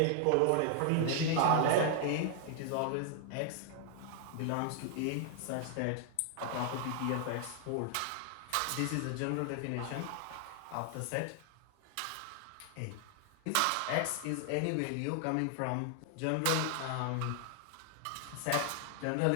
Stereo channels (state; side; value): different; both; correlation 0.00